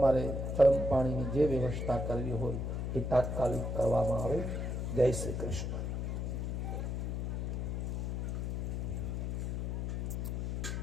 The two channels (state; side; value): noise; left; hum, 1 dB below the sound